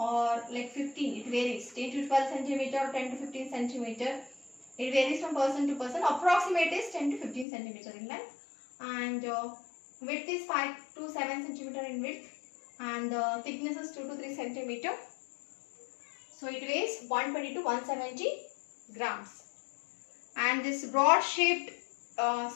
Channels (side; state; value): right; drops out; at 7.5 s